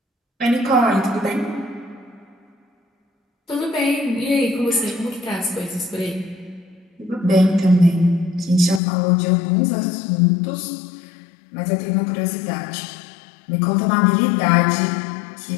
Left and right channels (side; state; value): right; drops out; at 8.8 s